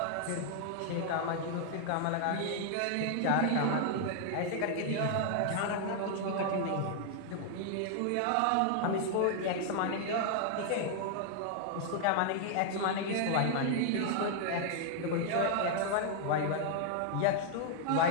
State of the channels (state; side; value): different; both; correlation 0.00